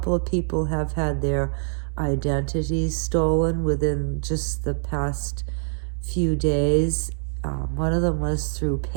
of people have had their identities stolen within just the past few days. One of them was through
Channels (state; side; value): silent; left; digital silence